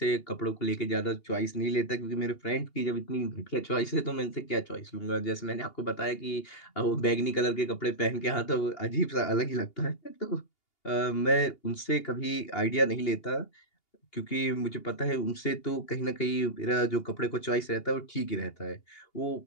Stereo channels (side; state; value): right; late; 2.8 ms